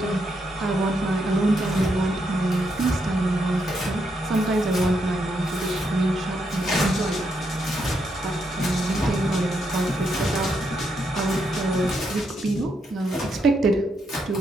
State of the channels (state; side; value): normal; both; correlation 0.79